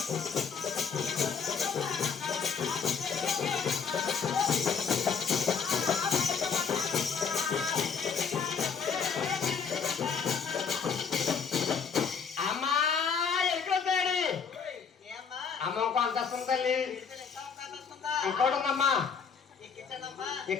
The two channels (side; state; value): right; quieter; 6.2 dB